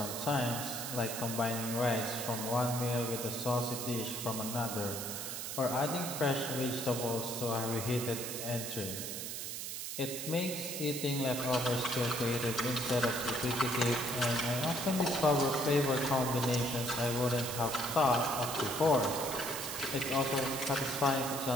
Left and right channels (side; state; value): right; noise; hiss, 5 dB below the sound